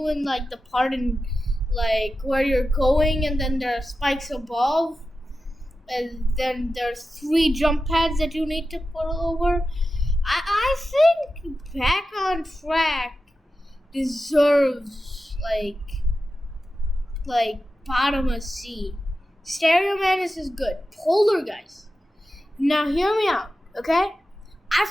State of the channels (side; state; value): both; normal; correlation 0.92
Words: in like the part in like where you're going, and then there are spikes above. And then there's 3 jump pads that you need to put over. I think Back on Track deserves like bottom of C. Stereo Madness is good. Polar Guys. Now hear me out, okay? I